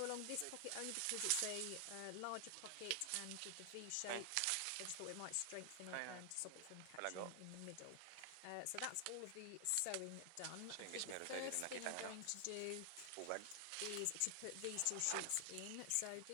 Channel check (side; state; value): both; different; correlation 0.00